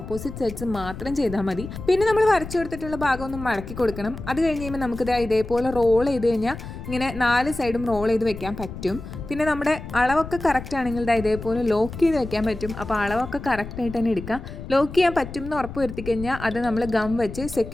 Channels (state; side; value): noise; left; rumble, 11 dB below the sound